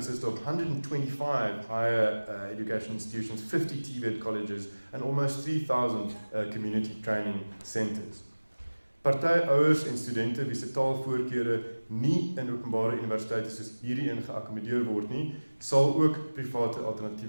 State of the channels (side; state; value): both; inverted; correlation -1.00